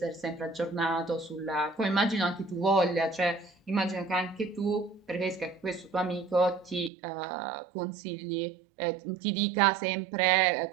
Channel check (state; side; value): drops out; left; at 6.9 s